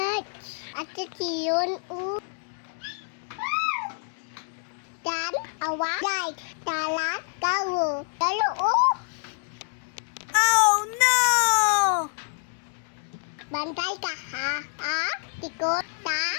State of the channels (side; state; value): right; silent; 60 dB below the other